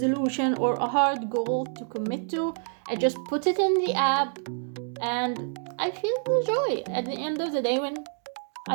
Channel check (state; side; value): silent; left; 60 dB below the other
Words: or a hard goal to commit to, I just put it in the app, and I feel the joy at the end of the day when